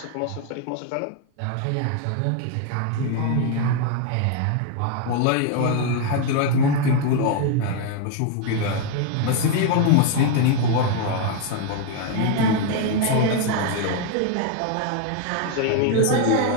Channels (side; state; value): both; different; correlation 0.01